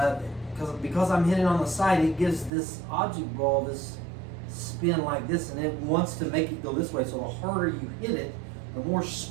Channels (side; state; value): left; drops out; at 2.5 s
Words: because I'm hitting on the side, it gives this object ball this spin like this, and it wants to make it go this way. So the harder you hit it, the more